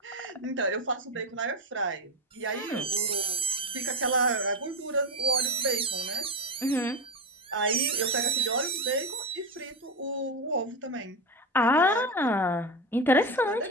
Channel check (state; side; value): normal; both; correlation 0.17